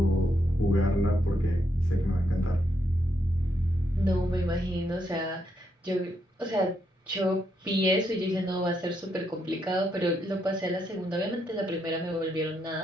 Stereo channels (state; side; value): normal; both; correlation 0.79